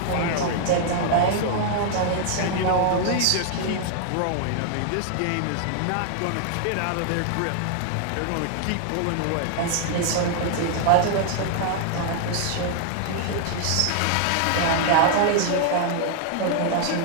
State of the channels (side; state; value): both; different; correlation 0.00